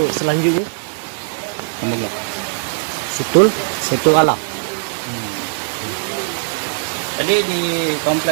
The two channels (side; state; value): left; silent; 58 dB below the other